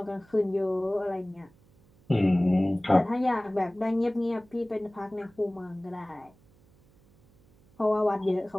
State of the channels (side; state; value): right; noise; hum, 30 dB below the sound